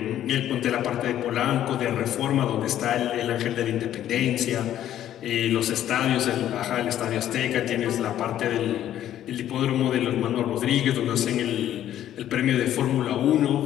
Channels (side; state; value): right; quieter; 11.7 dB